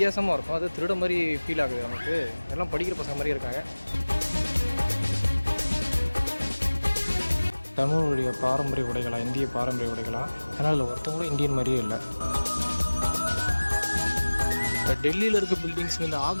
இருக்கும். அது திருட மாதிரி ஃபீல் ஆகுது நமக்கு. எல்லாம் படிக்கிற பசங்க மாதிரி இருக்காங்க. தமிழுடைய பாரம்பரிய உடைகளா, இந்திய பாரம்பரிய உடைகளா, ஆனால் அதில் ஒருத்தவங்களும் இந்தியன் மாதிரியே இல்லை. இப்போ டெல்லியில் இருக்க பில்டிங்ஸ், இந்த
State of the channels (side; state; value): both; inverted; correlation -1.00